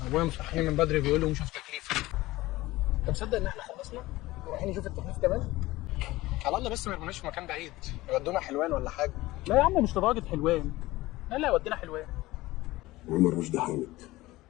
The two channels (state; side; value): quieter; right; 18.5 dB